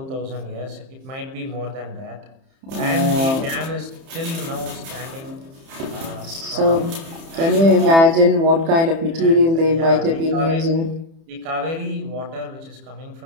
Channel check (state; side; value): late; left; 30 ms